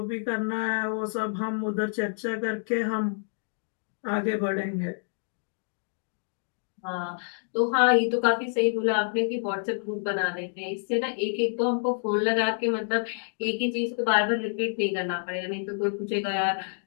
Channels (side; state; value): right; silent; digital silence